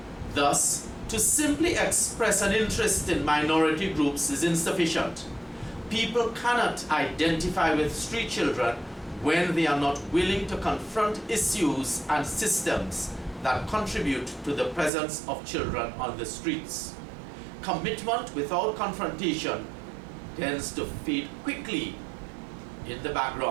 Thus, to simply express an interest in minority groups is insufficient. People cannot identify with street children when they are not willing to confront issues and systems that contribute to the presence of children on the streets. Commitment without confrontation tends to fade quickly in the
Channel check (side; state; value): left; drops out; at 14.9 s